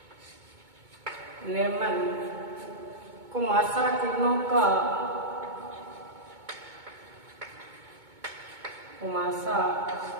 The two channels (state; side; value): late; left; 2.2 ms